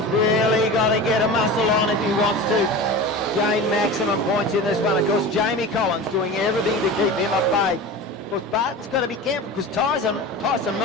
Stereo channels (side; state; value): both; normal; correlation 0.32